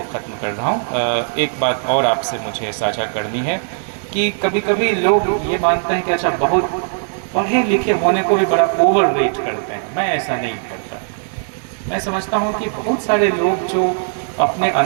ख़त्म कर रहा हूँ। एक बात और आपसे मुझे साझा करनी है कि कभी कभी लोग ये मानते हैं कि अच्छा, बहुत पढ़े लिखे होने को भी बड़ा ओवर वेट करते हैं। मैं ऐसा नहीं करता। मैं समझता हूँ कि बहुत सारे लोग जो अपने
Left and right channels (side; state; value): left; silent; digital silence